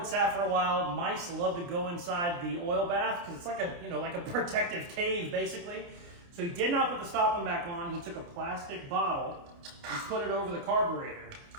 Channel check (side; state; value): left; late; 29 ms